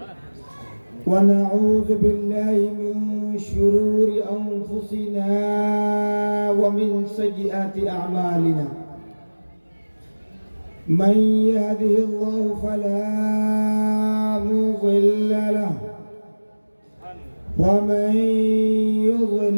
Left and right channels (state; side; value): inverted; both; correlation -1.00